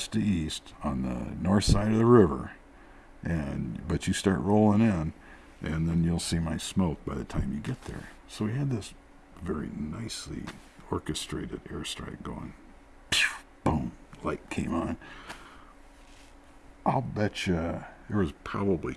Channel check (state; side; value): identical; both; correlation 1.00